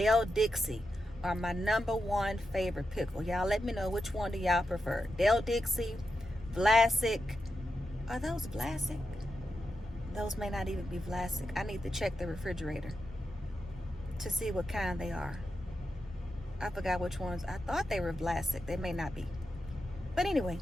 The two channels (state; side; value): normal; both; correlation 0.88